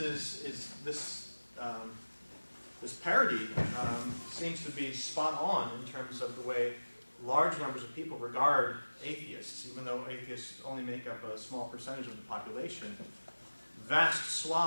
this parity seems to be spot on in terms of the way large numbers of people regard atheists, even though atheists only make up a small percentage of the population. Vast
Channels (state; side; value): inverted; both; correlation -1.00